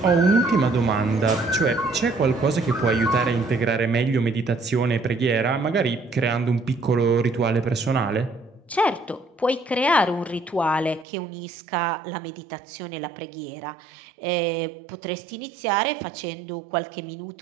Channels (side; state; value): left; drops out; at 11.1 s